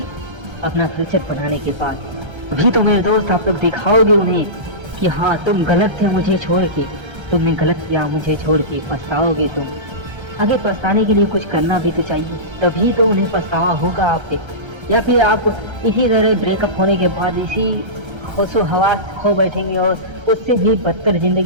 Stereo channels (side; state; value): left; late; 1.3 ms